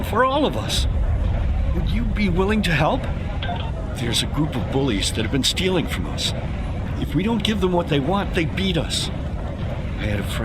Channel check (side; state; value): both; identical; correlation 1.00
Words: for all of us. Would you be willing to help? There's a group of bullies that have been stealing from us. If we don't give them what they want, they beat us. I had a